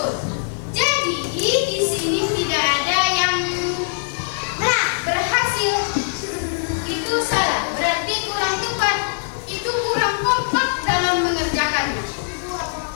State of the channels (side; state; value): right; silent; digital silence